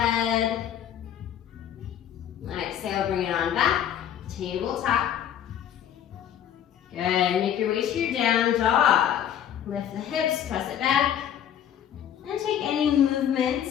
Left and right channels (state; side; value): quieter; right; 10.0 dB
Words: Exhale, bring it on back. Tabletop. Good, make your way to your down dog. Lift the hips, press it back. And take any